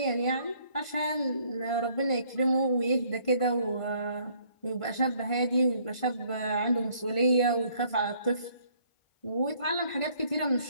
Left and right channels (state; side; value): late; right; 1.5 ms